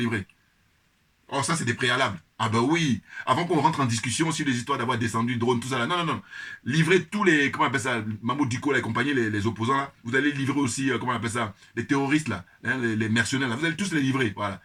Oh, ça, c'est des préalables. Ah ben oui, avant qu'on rentre en discussion sur les histoires d'avoir descendu drone, tout ça là. Non, non, non. Livrez tous les, comment on appelle ça, Mahmoud Diko et compagnie, les opposants là. Vous allez livrer aussi, comment on appelle ça, les terroristes là, hein, les mercenaires là. Vous allez tous les livrer, voilà.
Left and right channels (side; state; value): both; identical; correlation 1.00